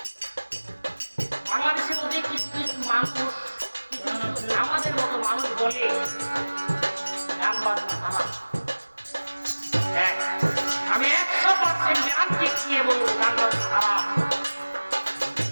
কিছু কিছু মানুষ, আমাদের মতো মানুষ বলে গান বাজনা খারাপ। হ্যাঁ, আমি 100% গ্যারান্টি দিয়ে বলবো গান বাজনা খারাপ,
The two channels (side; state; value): both; inverted; correlation -1.00